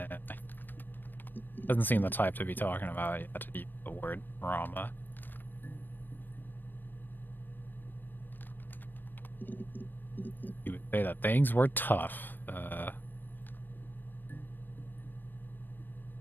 Doesn't seem the type to be talking about yet to use the word trauma. You would say that things were tough.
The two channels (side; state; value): right; late; 0.091 ms